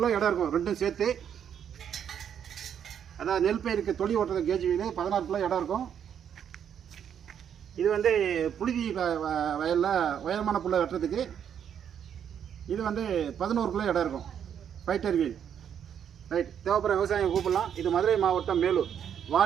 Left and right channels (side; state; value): left; quieter; 8.7 dB